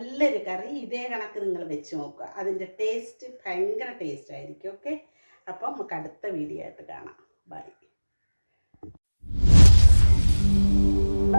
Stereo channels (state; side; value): inverted; both; correlation -1.00